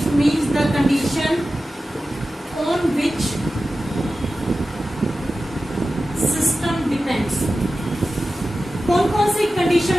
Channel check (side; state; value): both; normal; correlation 0.94